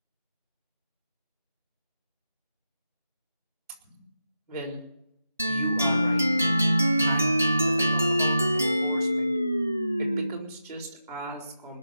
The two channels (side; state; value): both; inverted; correlation -0.90